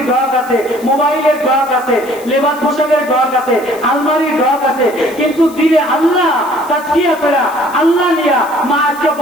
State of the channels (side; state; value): left; noise; hiss, 20 dB below the sound